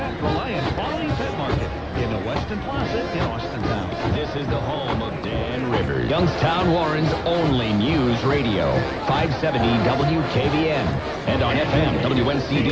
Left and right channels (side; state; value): both; identical; correlation 1.00